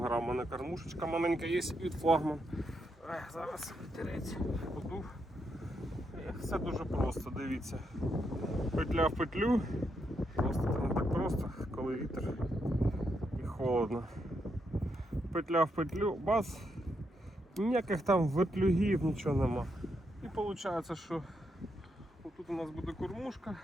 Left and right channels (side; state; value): both; normal; correlation 0.80